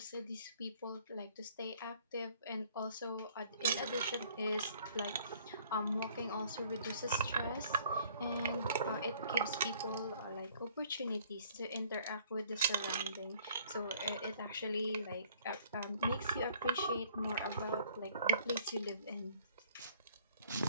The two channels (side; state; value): both; inverted; correlation -0.58